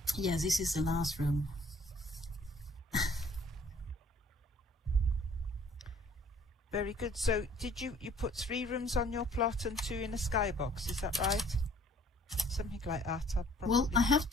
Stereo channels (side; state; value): both; normal; correlation 0.57